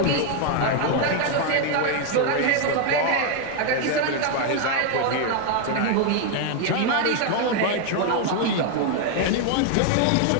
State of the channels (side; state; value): both; different; correlation 0.01